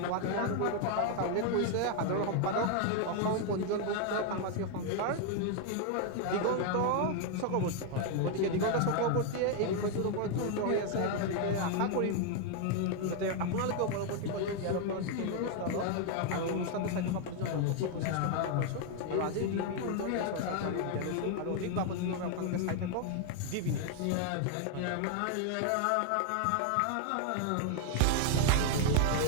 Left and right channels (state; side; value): different; both; correlation 0.00